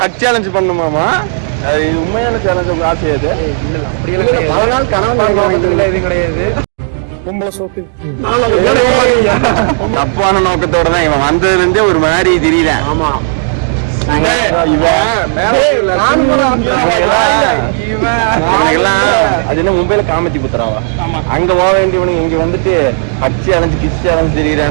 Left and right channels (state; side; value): silent; left; digital silence